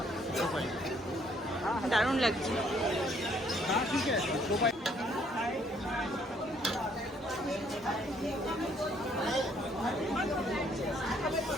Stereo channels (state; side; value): normal; both; correlation 0.65